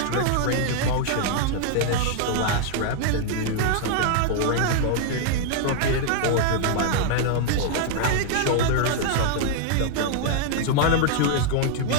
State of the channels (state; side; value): different; both; correlation -0.01